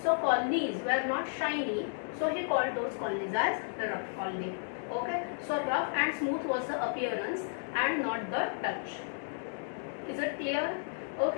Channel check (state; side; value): silent; right; digital silence